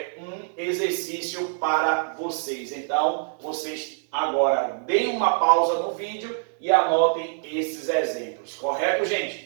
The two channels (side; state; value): left; silent; 62 dB below the other